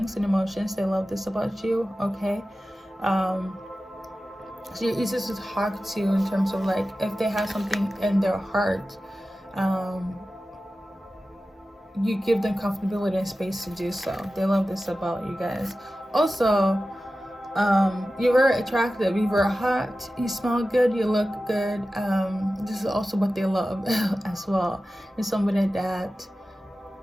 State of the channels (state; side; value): normal; both; correlation 0.94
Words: and emotions. They love this about you, okay? So you're easy to talk to in terms of like if they have something in their heart, you give them comfortability and space to do so. They love this about you guys. Also, you're very attractive, you're very hot, you smell good, you look good. This is also what they love as well. You're somebody that